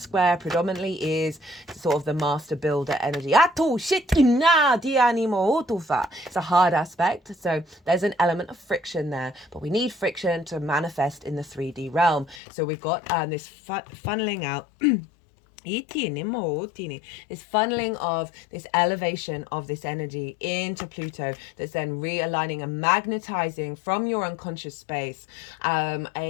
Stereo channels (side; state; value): right; drops out; at 12.4 s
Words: predominantly is sort of the master builder energy. It's a hard aspect, so there's an element of friction there, but we need friction to manifest in the 3D realm. So we've got this funneling out This funneling of this elevation of this energy into Pluto that's then realigning and magnetizing from your unconscious space